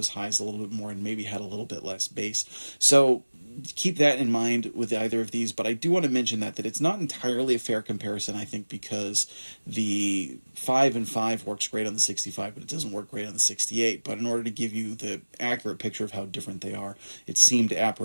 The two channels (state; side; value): inverted; both; correlation -1.00